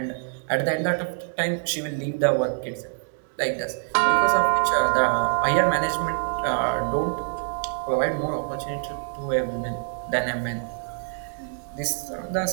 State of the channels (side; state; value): left; silent; digital silence